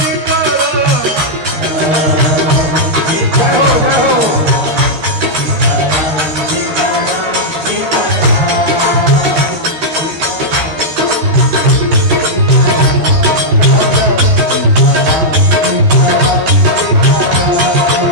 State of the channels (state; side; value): late; left; 13 ms